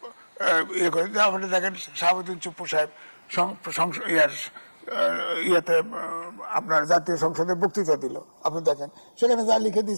ইয়ে করে, আপনি দেখেন শাহাবুদ্দিন চুপ্পু সাহেব ইয়েতে আপনার জাতীয় সংসদে বক্তৃতা দিল, আপনি দেখেন সেখানে যা লিখে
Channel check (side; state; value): both; inverted; correlation -1.00